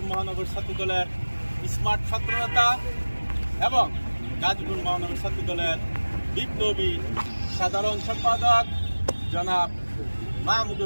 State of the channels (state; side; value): inverted; both; correlation -1.00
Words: মহানগর ছাত্র দলের স্মার্ট ছাত্রনেতা এবং গাজীপুর মহানগর ছাত্র দলের বিপ্লবী সাধারণ সম্পাদক জনাব